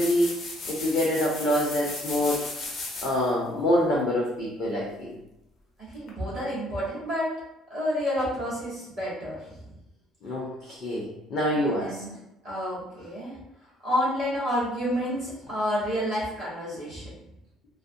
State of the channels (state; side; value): normal; both; correlation 0.64